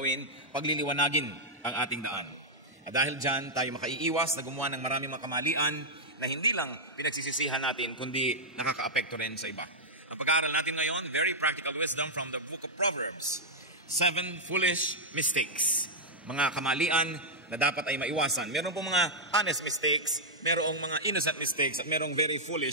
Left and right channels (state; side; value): normal; both; correlation -0.06